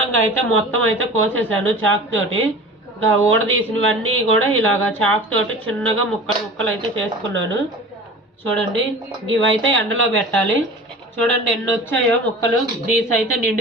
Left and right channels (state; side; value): normal; both; correlation 0.38